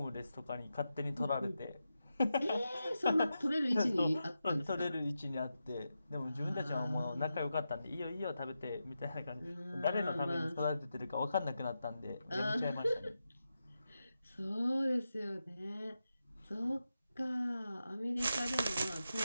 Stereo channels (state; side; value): inverted; both; correlation -0.89